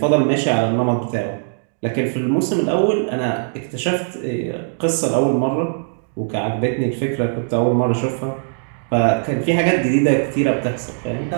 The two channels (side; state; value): left; silent; digital silence